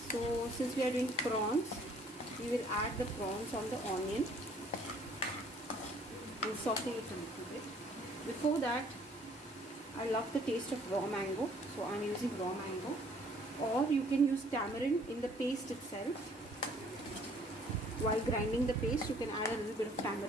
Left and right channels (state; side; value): normal; both; correlation 0.59